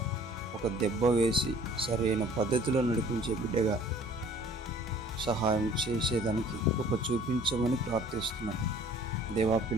ఒక దెబ్బ వేసి సరైన పద్ధతిలో నడిపించే బిడ్డగా సహాయం చేసేదానికి గొప్ప చూపించమని ప్రార్థిస్తున్నాం. దేవా,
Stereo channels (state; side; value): normal; both; correlation 0.52